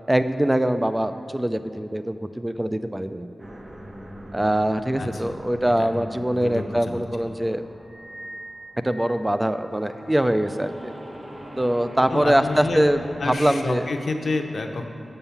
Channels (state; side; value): normal; both; correlation 0.98